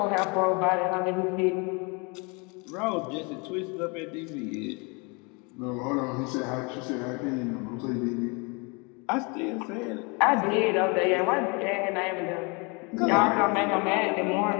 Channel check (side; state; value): right; quieter; 30.8 dB